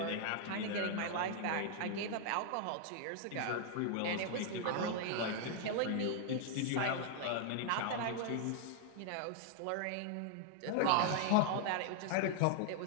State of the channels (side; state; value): both; different; correlation 0.00